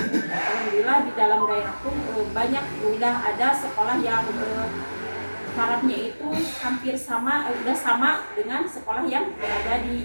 di dalam daerah pun banyak udah ada sekolah yang syaratnya itu hampir sama, udah sama dengan sekolah yang ada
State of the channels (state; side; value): inverted; both; correlation -1.00